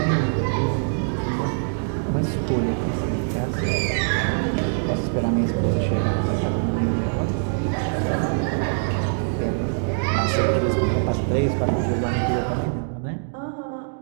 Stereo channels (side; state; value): left; silent; digital silence